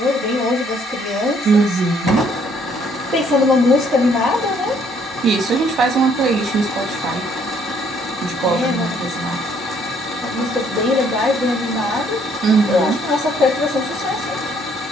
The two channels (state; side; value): normal; both; correlation 0.65